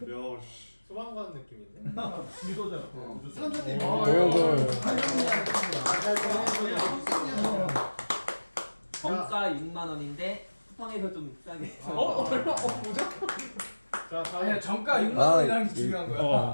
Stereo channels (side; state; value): both; inverted; correlation -1.00